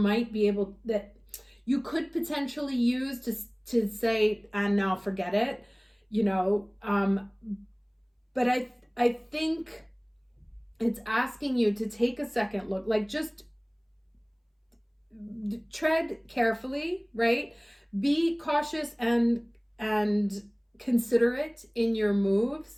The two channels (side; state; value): both; identical; correlation 1.00